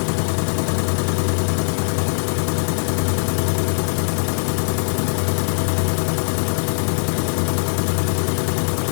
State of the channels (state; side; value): silent; right; digital silence